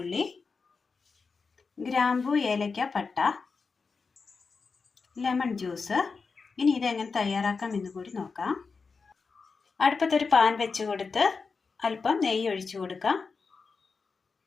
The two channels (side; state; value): right; quieter; 4.8 dB